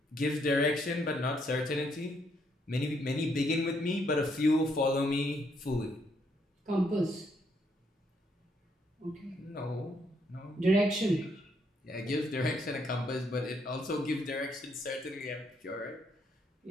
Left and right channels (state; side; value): normal; both; correlation 0.73